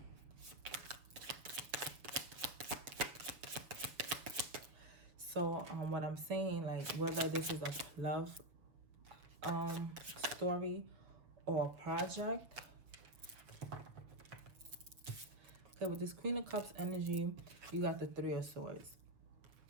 So So what I'm saying, like, whether this is a love story or a project. Okay, with this Queen of Cups energy, you got the Three of Swords.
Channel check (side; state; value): left; late; 7.1 ms